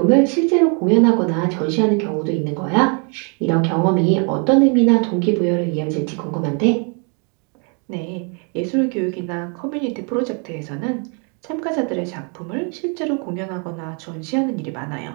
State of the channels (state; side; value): quieter; left; 37.1 dB